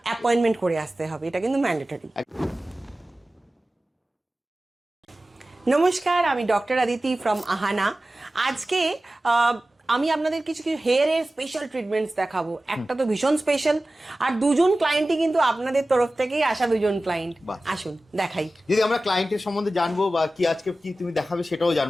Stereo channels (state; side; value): normal; both; correlation 0.96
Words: অ্যাপয়েন্টমেন্ট করে আসতে হবে, এটা কিন্তু ম্যান্ডেটরি। নমস্কার, আমি ডক্টর আদিতি ফ্রম আহানা। আজকে আমি আপনাদের কিছু হেয়ারের স্পেশাল ট্রিটমেন্টস দেখাবো। একটা তো ভীষণ স্পেশাল, আর দুজন ক্লায়েন্টই কিন্তু আপনাদের তরফ থেকেই আসা দুজন ক্লায়েন্ট। আসুন দেখাই। যদি আমরা ক্লায়েন্টের সম্বন্ধে জানবো বা কি আজকে কি তুমি দেখাবে সেটাও